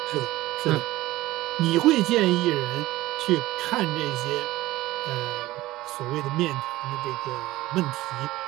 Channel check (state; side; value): quieter; left; 17.4 dB